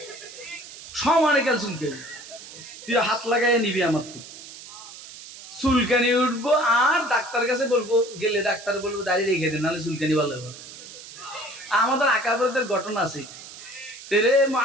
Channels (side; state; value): right; noise; hiss, 15 dB below the sound